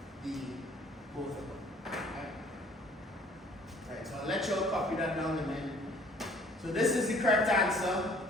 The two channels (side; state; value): both; normal; correlation 0.55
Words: both of them. Right? So I'll let you all copy that down and then. So this is the correct answer.